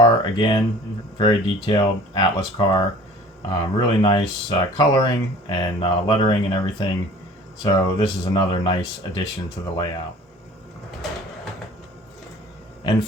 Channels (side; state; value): both; normal; correlation 0.47